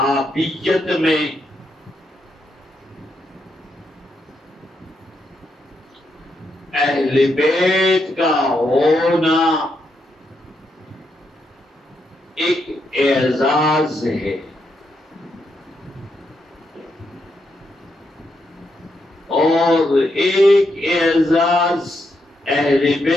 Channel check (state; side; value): normal; both; correlation 0.80